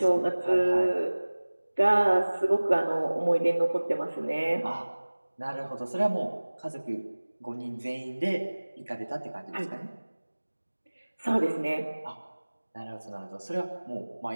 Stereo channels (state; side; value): inverted; both; correlation -1.00